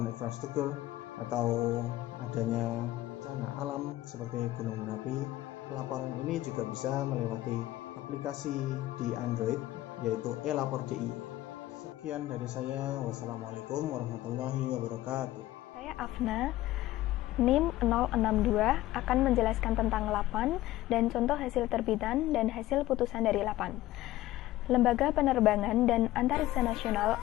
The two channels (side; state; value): right; quieter; 15.7 dB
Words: infrastruktur atau adanya bencana alam seperti gunung Merapi. Laporan ini juga bisa melewati aplikasi di Android, yaitu e-lapor DIY. Sekian dari saya. Wassalamualaikum warahmatullahi wabarakatuh. Saya Afna, NIM 062, akan menjelaskan tentang LAPAN dan contoh hasil terbitan dan hasil putusan dari LAPAN. Lembaga Penerbangan dan Antariksa Nasional